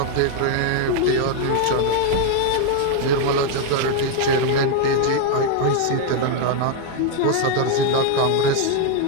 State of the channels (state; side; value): different; both; correlation 0.00